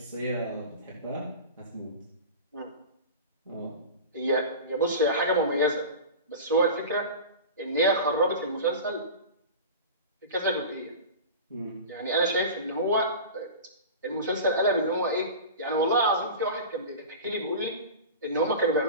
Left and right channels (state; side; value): inverted; both; correlation -0.31